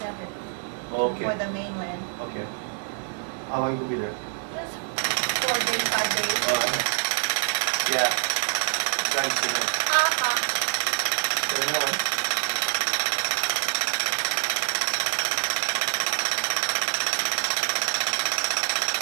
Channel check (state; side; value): silent; left; digital silence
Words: for the mainland. Okay. How long you will be there? Just 4 days, 5 days. Yeah. Thanks to me. More.